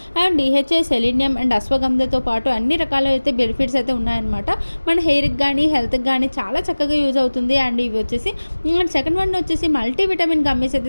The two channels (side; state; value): both; inverted; correlation -1.00